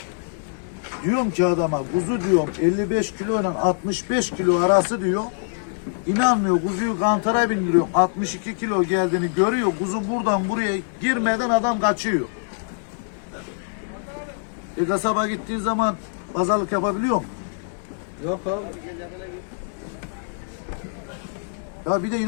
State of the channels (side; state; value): right; silent; digital silence